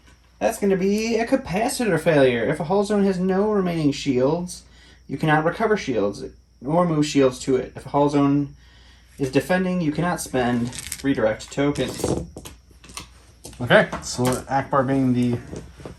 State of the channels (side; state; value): both; identical; correlation 1.00